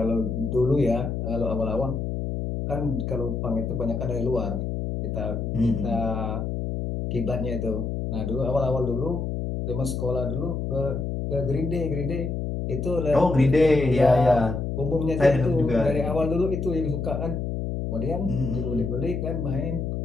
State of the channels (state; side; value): noise; left; hum, 3 dB below the sound